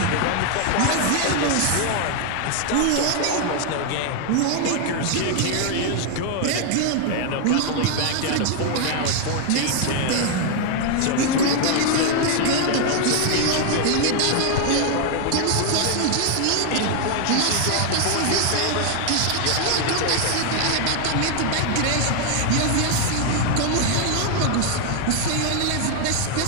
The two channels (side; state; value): both; different; correlation 0.01